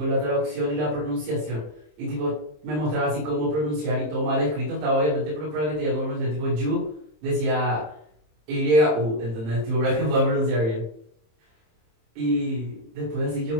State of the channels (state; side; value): late; left; 27 ms